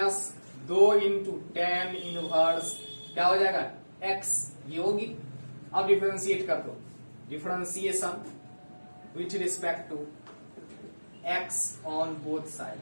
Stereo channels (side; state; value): both; inverted; correlation -1.00